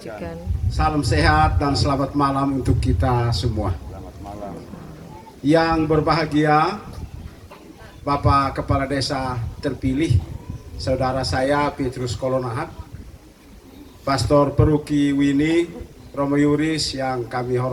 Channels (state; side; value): identical; both; correlation 1.00